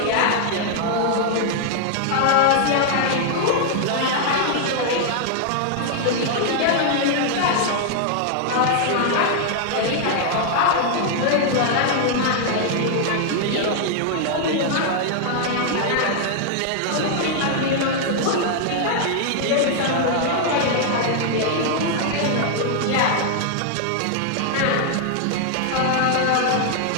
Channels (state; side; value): different; both; correlation 0.00